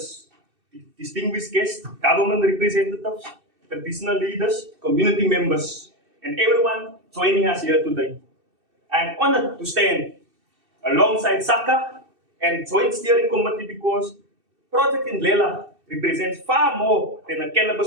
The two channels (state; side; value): late; left; 2.6 ms